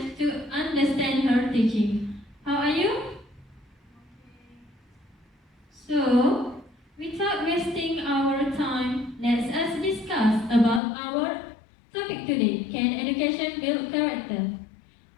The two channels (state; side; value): drops out; right; at 10.8 s